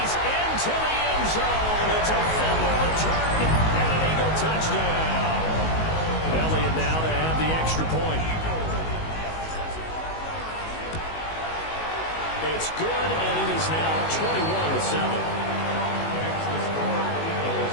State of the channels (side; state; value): right; late; 19 ms